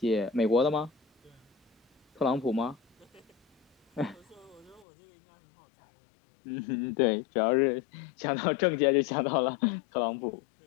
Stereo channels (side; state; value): right; drops out; at 4.9 s